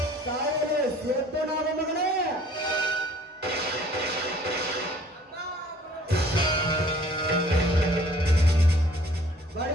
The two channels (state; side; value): normal; both; correlation 0.55